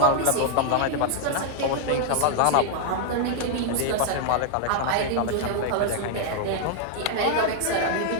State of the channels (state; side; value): different; both; correlation 0.00